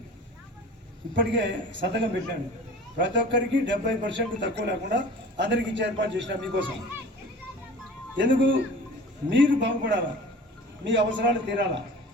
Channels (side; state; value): both; normal; correlation 0.41